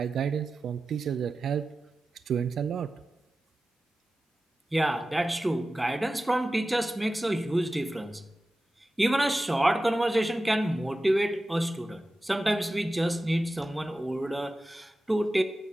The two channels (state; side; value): normal; both; correlation 0.94